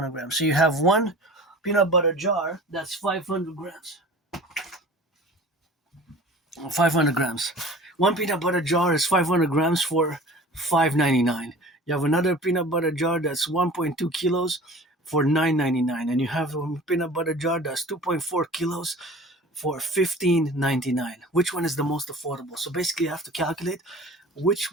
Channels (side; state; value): both; normal; correlation 0.42